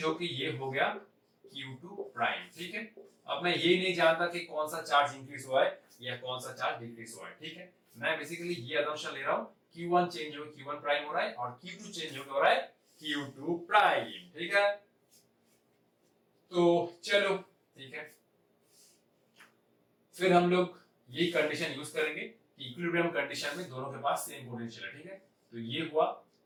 होके ये हो गया Q2 प्राइम, ठीक है। अब मैं ये नहीं जानता कि कौन सा चार्ज इंक्रीज हुआ है या कौन सा चार्ज डिक्रीज हुआ है, ठीक है। मैं बेसिकली ये असम्पशन ले रहा हूं Q1 चेंज हो Q1 प्राइम हो रहा है और Q2 चेंज हो रहा है Q2 प्राइम, ठीक है। तो चलो, ठीक है, फिर हम लोग यही कंडीशन यूज करेंगे कि इक्विलिब्रियम कंडीशन में दोनों के पास सेम पोटेंशियल है, ठीक है। तो ये हुआ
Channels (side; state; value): both; identical; correlation 1.00